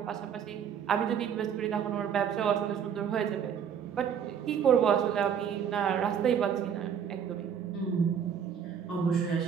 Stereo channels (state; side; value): quieter; left; 8.0 dB